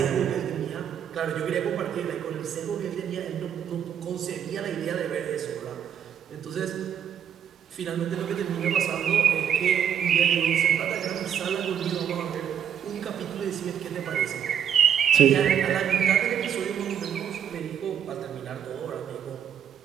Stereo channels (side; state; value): left; quieter; 8.8 dB